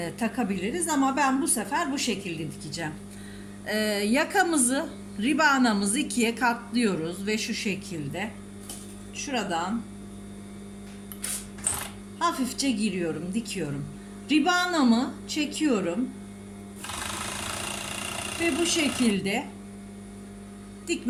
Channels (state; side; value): identical; both; correlation 1.00